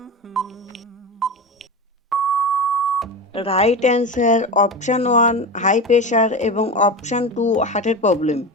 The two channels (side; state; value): both; normal; correlation 0.24